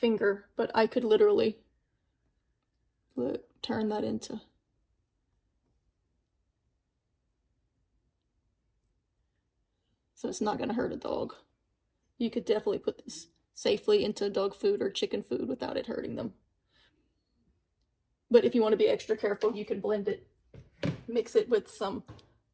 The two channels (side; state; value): both; identical; correlation 1.00